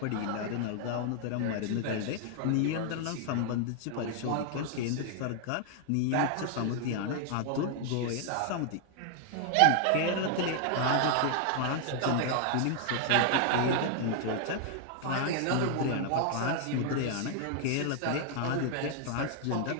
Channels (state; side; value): different; both; correlation 0.00